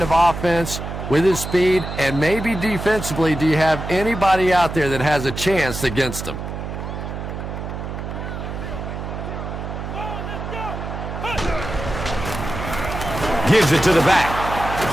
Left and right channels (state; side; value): noise; right; hum, 7 dB below the sound